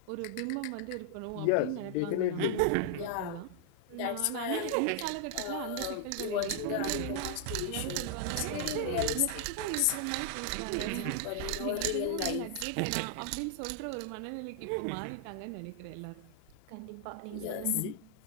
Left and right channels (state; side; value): different; both; correlation -0.01